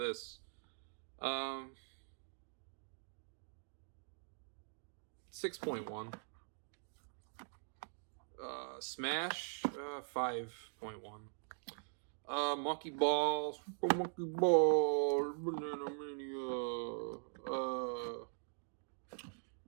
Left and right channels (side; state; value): left; silent; digital silence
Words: 6.1. Smash 5.1. Monkey Balls, Monkey Balls, Banana Mania.